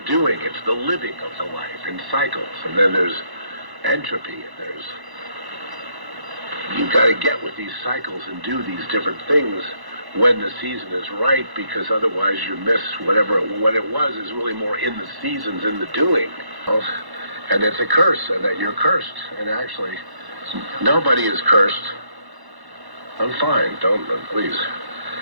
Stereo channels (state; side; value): late; left; 1.1 ms